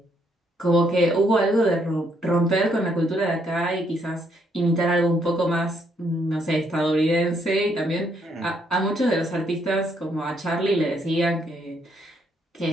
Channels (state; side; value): normal; both; correlation 0.72